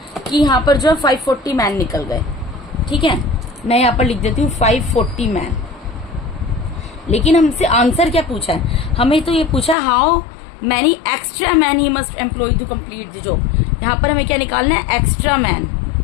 कि यहाँ पर जो है 540 मैन निकल गए। ठीक है, मैं यहाँ पर लिख देती हूँ 540 मैन। लेकिन हमसे आंसर क्या पूछा है, हमें तो ये पूछा how many extra man he must employ to complete the job. यहाँ पर हमें क्या निकालना है, एक्स्ट्रा मैन।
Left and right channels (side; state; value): right; drops out; at 9.8 s